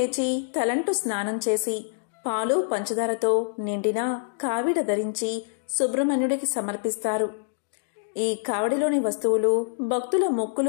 తలంటు స్నానం చేసి పాలు పంచదారతో నిండిన కావిడ ధరించి సుబ్రహ్మణ్యుడికి సమర్పిస్తారు. ఈ కావిడిలోని వస్తువులు భక్తుల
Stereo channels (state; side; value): silent; right; digital silence